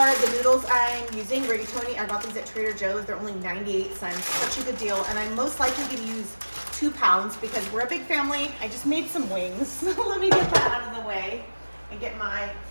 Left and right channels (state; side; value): inverted; both; correlation -1.00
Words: the noodles I'm using, rigatoni. I got these at Trader Joe's. They're only 98 cents. Such a good deal. And I'm most likely going to use 2 pounds because we're a big family. I just made some wings. Let me get that out of the way and get my